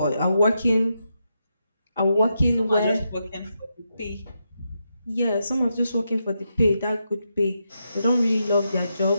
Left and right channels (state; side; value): inverted; both; correlation -0.84